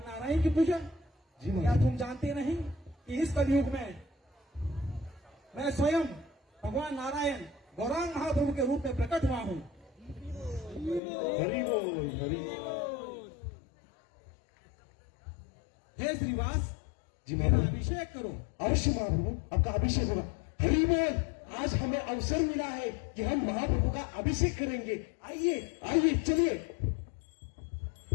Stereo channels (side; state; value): right; drops out; at 11.0 s